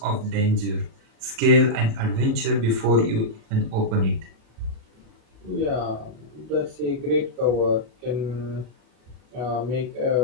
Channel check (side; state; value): left; late; 37 ms